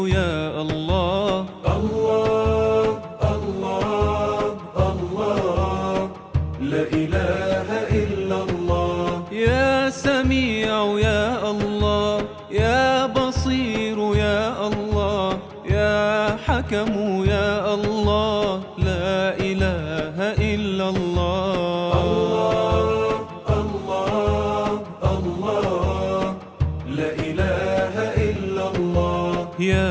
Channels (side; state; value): both; identical; correlation 1.00